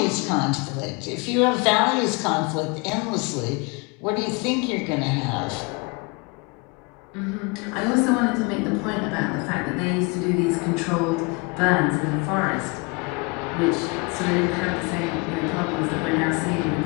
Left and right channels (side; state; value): right; quieter; 29.5 dB